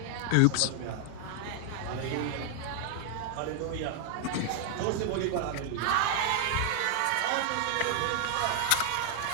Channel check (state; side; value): different; both; correlation 0.00